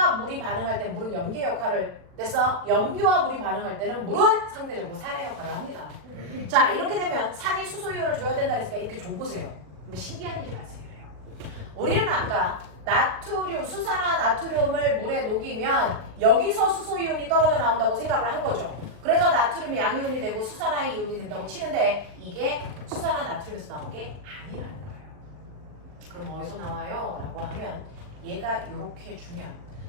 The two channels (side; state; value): left; late; 39 ms